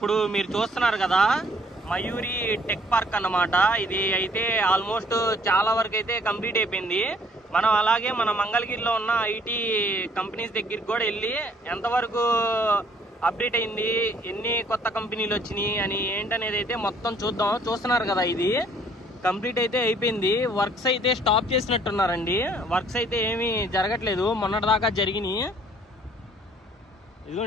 మీరు చూస్తున్నారు కదా మయూరి టెక్ పార్క్ అన్నమాట. ఇది అయితే ఆల్మోస్ట్ చాలా వరకు అయితే కంప్లీట్ అయిపోయింది. మనం అలాగే మన మంగళగిరిలో ఉన్న ఐటీ కంపెనీస్ దగ్గరికి కూడా వెళ్ళి ఎంతవరకు అప్డేట్ అయింది, ఎన్ని కొత్త కంపెనీలు వచ్చినాయి అని ఏంటనేది అయితే మొత్తం చూద్దాం. చూస్తున్నారు కదా, ఇది కంప్లీట్ అయితే అయిపోయింది. వర్క్స్ అయితే స్టాప్ చేసినట్టున్నారండి. వర్క్స్ అయితే ఏమీ జరగట్లేదు, మొన్నటిదాకా జరిగినాయి.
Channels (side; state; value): both; normal; correlation 0.60